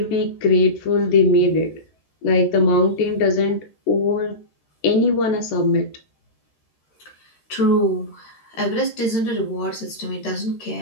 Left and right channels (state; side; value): late; right; 13 ms